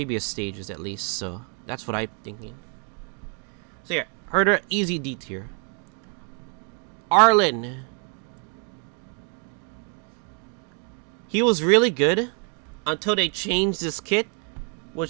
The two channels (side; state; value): left; quieter; 38.9 dB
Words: stages at least, so that's what I'm thinking. So yeah, Herta, easy D tier. Arlen. He was really good until they changed this kit,